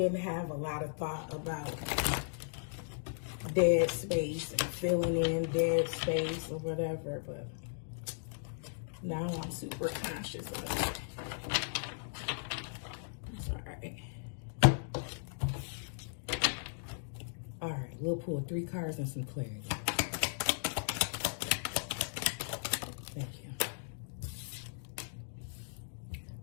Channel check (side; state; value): right; silent; digital silence